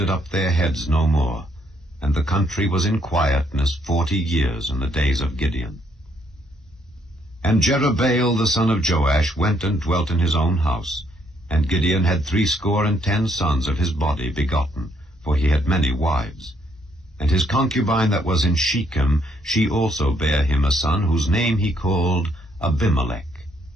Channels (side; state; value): both; normal; correlation 0.71